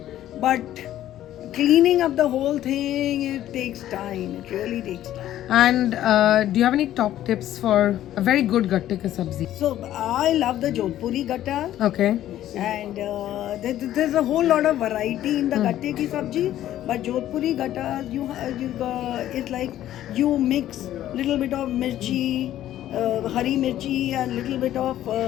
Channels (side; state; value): right; quieter; 12.7 dB